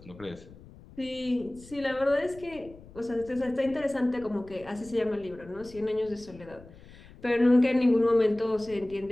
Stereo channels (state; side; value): noise; left; rumble, 20 dB below the sound